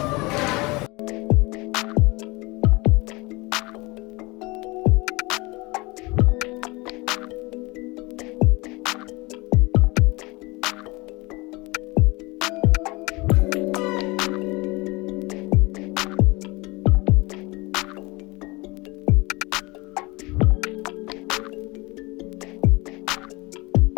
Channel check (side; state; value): right; quieter; 24.3 dB